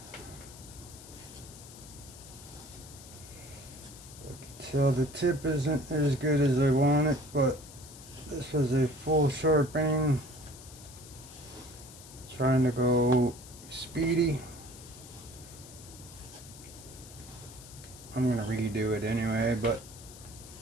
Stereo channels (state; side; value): noise; left; hiss, 17 dB below the sound